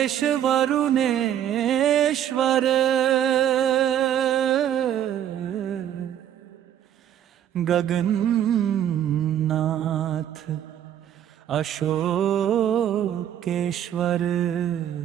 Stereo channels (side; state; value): left; quieter; 10.4 dB